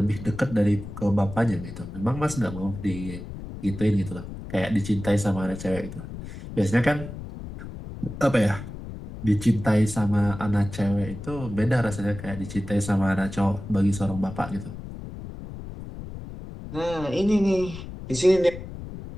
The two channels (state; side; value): noise; left; rumble, 11 dB below the sound